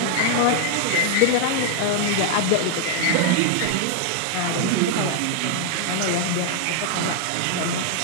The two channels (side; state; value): both; different; correlation 0.00